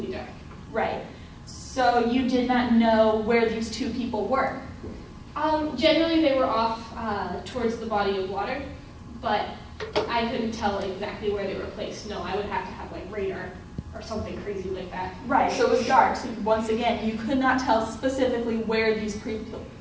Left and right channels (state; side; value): identical; both; correlation 1.00